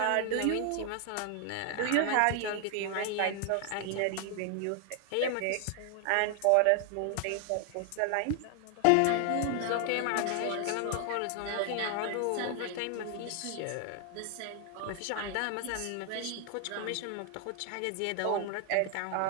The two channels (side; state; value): both; different; correlation 0.00